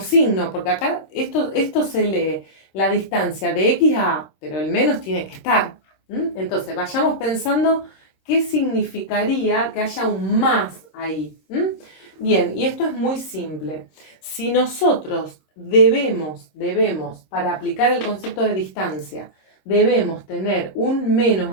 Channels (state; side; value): late; right; 26 ms